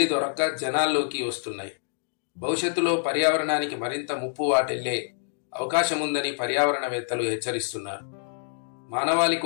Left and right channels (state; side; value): silent; right; digital silence